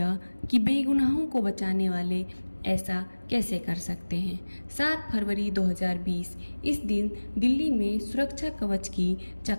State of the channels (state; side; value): inverted; both; correlation -1.00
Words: कि बेगुनाहों को बचाने वाले ऐसा कैसे कर सकते हैं। 7 फरवरी 2020 इस दिन दिल्ली में सुरक्षा कवच की